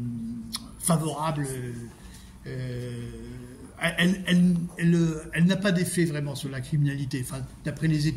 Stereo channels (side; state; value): both; identical; correlation 1.00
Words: favorable. Elle n'a pas d'effet vraiment sur la criminalité, enfin, d'après les